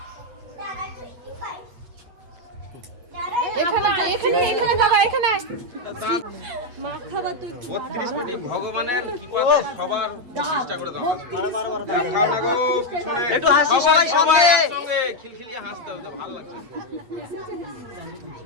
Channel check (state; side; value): late; left; 8.2 ms